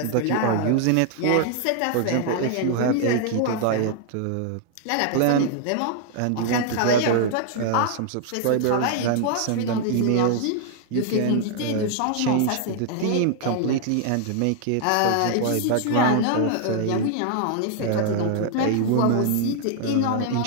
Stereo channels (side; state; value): both; different; correlation 0.00